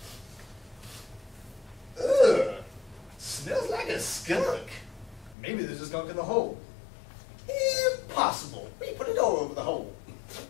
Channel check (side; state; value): right; drops out; at 5.4 s